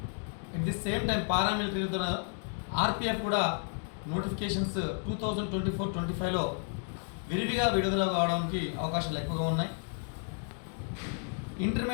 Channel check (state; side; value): silent; right; 56 dB below the other